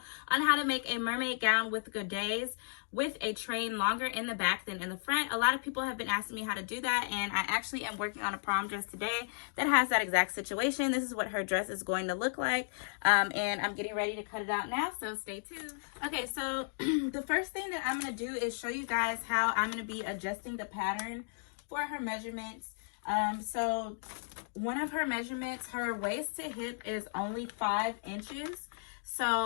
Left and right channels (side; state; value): right; silent; digital silence